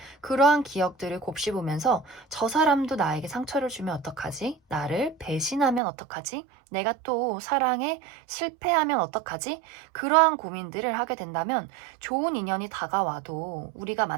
그러한 기억들을 곱씹으면서 저 사람도 나에게 상처를 주면 어떡하지? 나를 배신하면 어떡하지? 내가 또 사랑에 실패하면 어떡하지? 그러한 고민들을 하게 된다면 좋은 인연이 다가와도 우리가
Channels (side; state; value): left; drops out; at 5.8 s